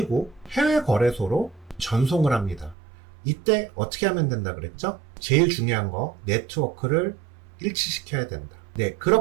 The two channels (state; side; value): drops out; left; at 2.8 s